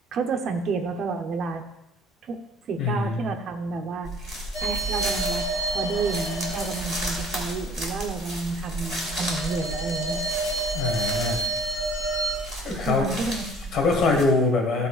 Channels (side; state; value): both; normal; correlation 0.51